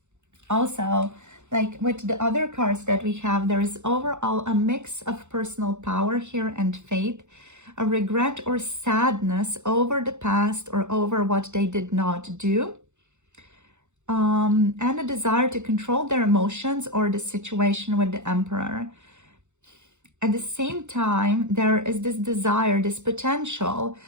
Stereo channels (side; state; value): left; late; 0.83 ms